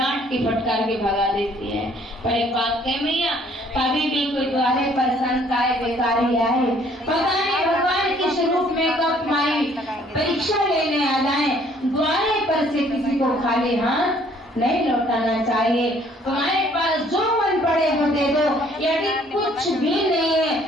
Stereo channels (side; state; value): both; normal; correlation 0.61